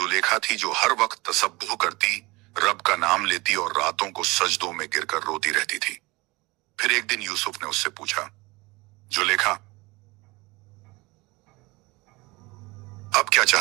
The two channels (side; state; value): left; quieter; 23.2 dB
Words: थी जो हर वक्त तसब्बुह करती, रब का नाम लेती और रातों को सजदों में गिरकर रोती रहती थी। फिर एक दिन यूसुफ ने उससे पूछा, जुलेखा, अब क्या